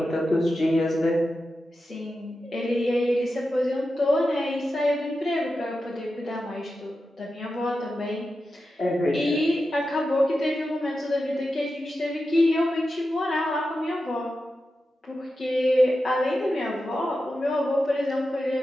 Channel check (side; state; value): both; normal; correlation 0.91